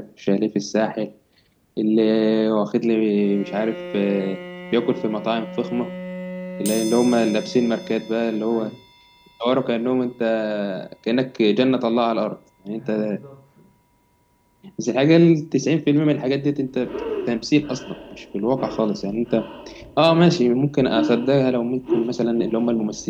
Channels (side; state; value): both; identical; correlation 1.00